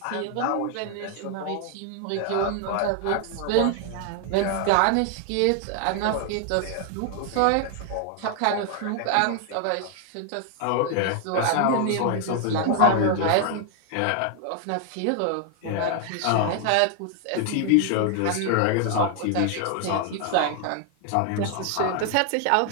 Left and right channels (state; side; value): different; both; correlation 0.00